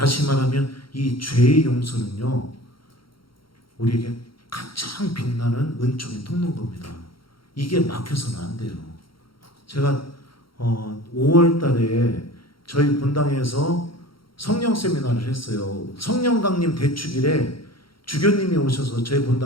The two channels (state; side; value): late; right; 0.74 ms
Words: 말하면 이 죄의 용서는요, 우리에게 가장 빛나는 은총의 통로인 겁니다. 이게 막혀서는 안 돼요. 제가 5월 달에 저희 본당에서 성령 세미나를 했어요. 성령 강림 대축일에 주교님이 오셔서 저희